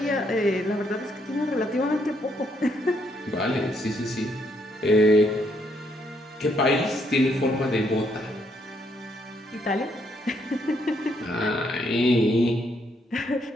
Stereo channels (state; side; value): normal; both; correlation 0.73